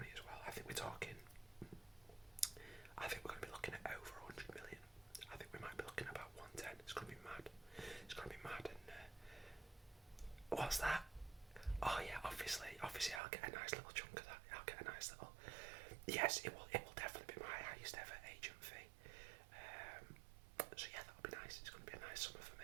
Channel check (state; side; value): drops out; left; at 13.2 s